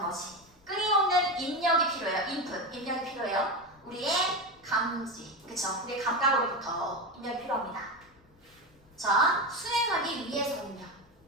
것이 끊임없는 입력이 필요해요. input, 입력이 필요해요. 우리의 감지, 그쵸? 우리의 감각으로부터 입력이 필요합니다. 자, 수행하기 위해서는요.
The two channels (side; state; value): left; noise; rumble, 30 dB below the sound